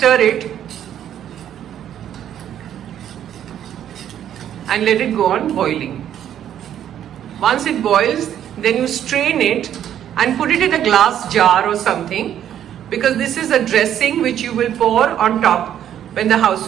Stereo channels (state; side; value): quieter; left; 10.4 dB